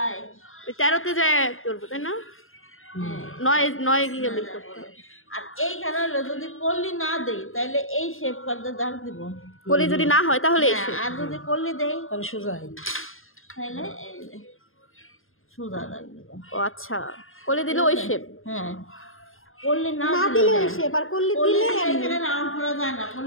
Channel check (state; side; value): late; right; 0.60 ms